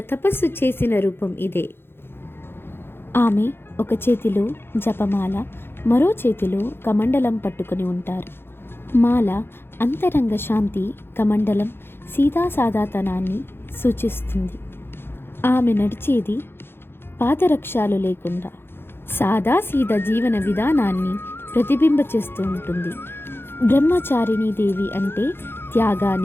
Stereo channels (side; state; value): right; late; 0.11 ms